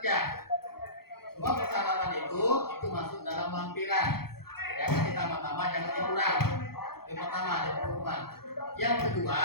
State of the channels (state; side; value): late; right; 0.95 ms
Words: Semua persyaratan itu masuk dalam lampiran. Jangan ditambah-tambah, jangan dikurang. Yang pertama ada pengumuman. Yang kedua,